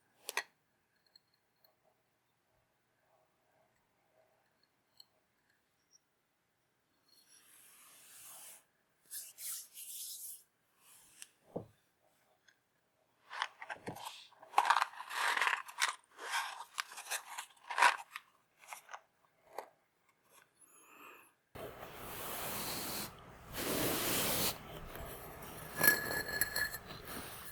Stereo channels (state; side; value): identical; both; correlation 1.00